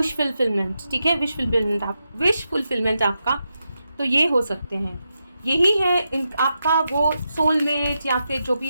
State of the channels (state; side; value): inverted; both; correlation -0.87